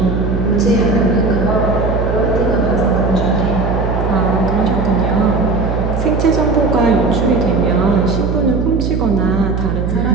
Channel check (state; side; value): noise; right; hum, 2 dB below the sound